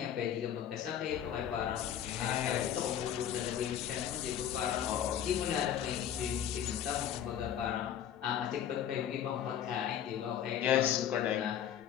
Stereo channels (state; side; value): quieter; right; 9.8 dB